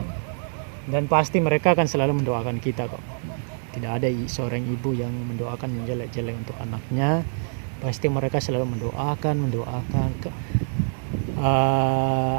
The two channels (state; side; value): silent; left; digital silence